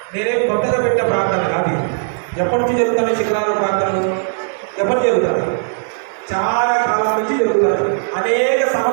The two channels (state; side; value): silent; left; digital silence